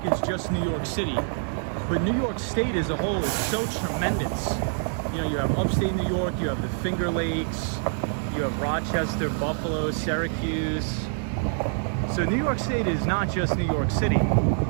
is just New York City, but New York State as a whole is so tremendous. You know, you have upstate New York, you have the Finger Lakes, you have Rochester, Buffalo, Syracuse. So New York State is not just New York City.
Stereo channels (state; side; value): silent; left; 61 dB below the other